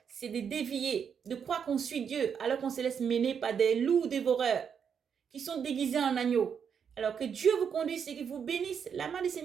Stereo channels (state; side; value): quieter; left; 7.2 dB